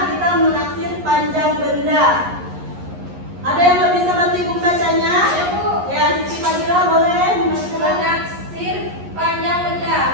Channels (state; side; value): late; left; 11 ms